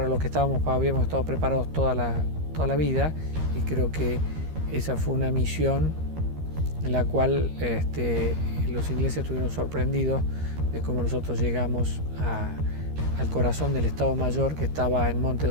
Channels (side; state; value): left; late; 13 ms